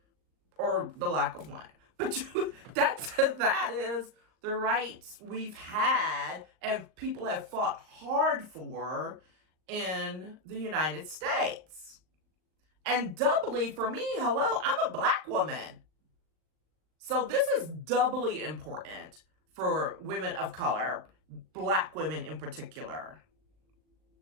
or the lack of one. But that is the rights we've had and people have fought hard for in the United States. And doubly for me, hello, I'm a Black woman. So this is doubly important for women of color, Black women in particular.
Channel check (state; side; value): late; left; 39 ms